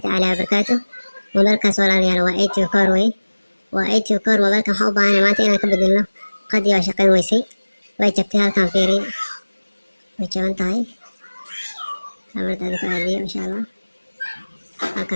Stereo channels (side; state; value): both; inverted; correlation -1.00